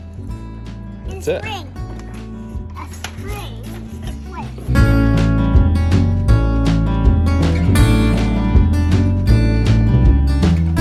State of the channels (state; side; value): identical; both; correlation 1.00